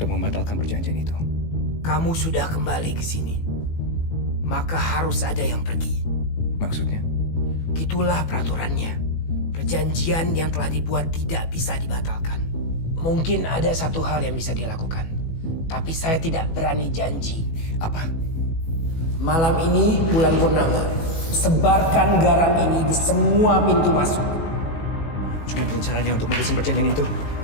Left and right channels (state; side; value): late; right; 18 ms